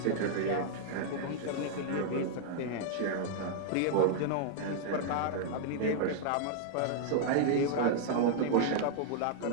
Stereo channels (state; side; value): different; both; correlation -0.01